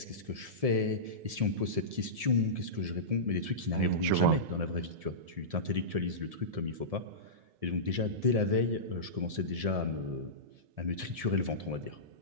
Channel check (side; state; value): left; late; 1.7 ms